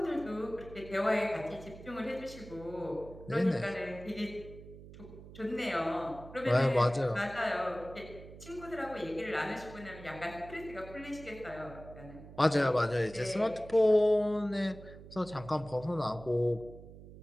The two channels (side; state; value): right; noise; hum, 16 dB below the sound